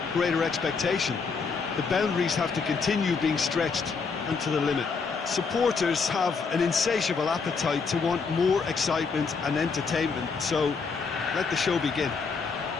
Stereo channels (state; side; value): quieter; right; 5.1 dB